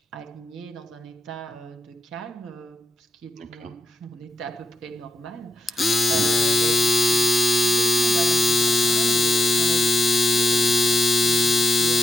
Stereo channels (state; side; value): normal; both; correlation 0.84